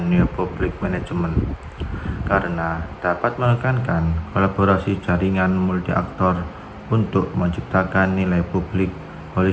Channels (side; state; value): both; identical; correlation 1.00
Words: neopublic management karena dapat menekankan kolaborasi jaringan multi aktor untuk menciptakan nilai publik